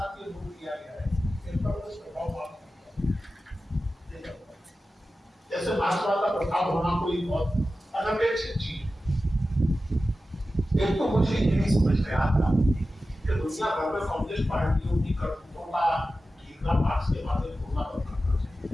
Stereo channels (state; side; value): normal; both; correlation 0.94